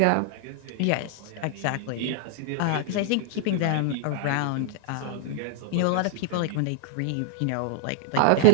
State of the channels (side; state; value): both; different; correlation -0.01